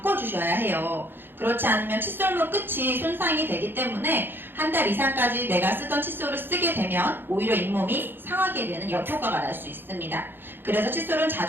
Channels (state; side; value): late; left; 0.10 ms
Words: 해요. 그렇지 않으면 칫솔목 끝이 손상이 되기 때문에 한 달 이상까지 내가 쓰던 칫솔을 쓰게 되면 오히려 잇몸이 상하게 되는 역효과가 날 수 있습니다. 그래서 칫솔은